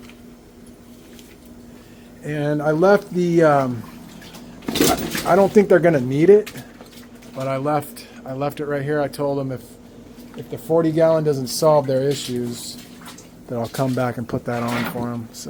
And I left the, I don't think they're going to need it, but I left it right here. I told them if the 40 gallon doesn't solve their issues, that I'll come back and put that on for them.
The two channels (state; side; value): identical; both; correlation 1.00